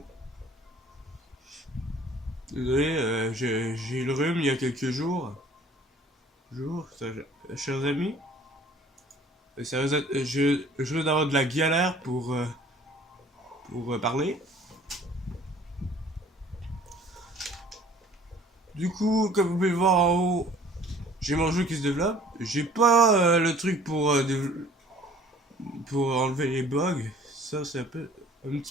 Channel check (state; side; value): normal; both; correlation 0.53